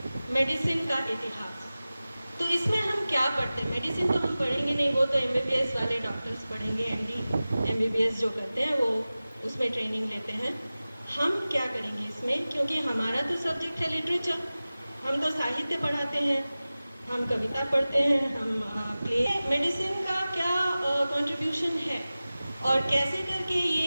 मेडिसिन का इतिहास। तो इसमें हम क्या पढ़ते हैं? मेडिसिन तो हम पढ़ेंगे नहीं, वो तो MBBS वाले डॉक्टर्स पढ़ेंगे, MD MBBS जो करते हैं वो उसमें ट्रेनिंग लेते हैं। हम क्या करेंगे इसमें? क्योंकि हमारा तो सब्जेक्ट है लिटरेचर, हम तो साहित्य पढ़ाते हैं, हम कविता पढ़ते हैं, हम प्ले। मेडिसिन का क्या कंट्रीब्यूशन है और कैसे करके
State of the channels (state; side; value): inverted; both; correlation -0.97